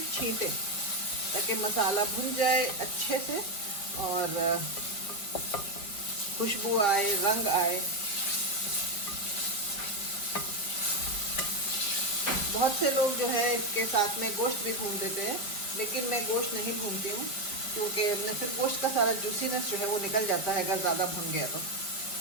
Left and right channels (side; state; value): right; late; 5.1 ms